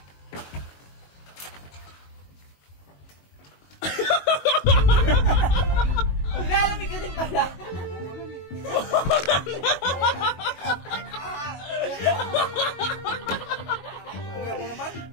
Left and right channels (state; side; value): late; right; 22 ms